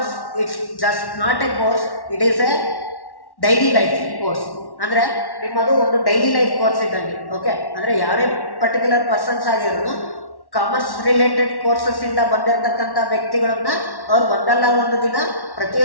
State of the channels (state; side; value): late; right; 1.1 ms